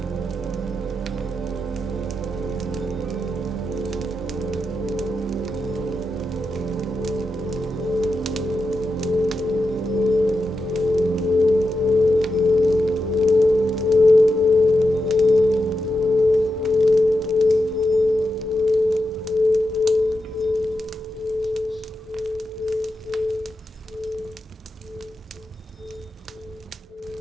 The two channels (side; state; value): both; normal; correlation 0.88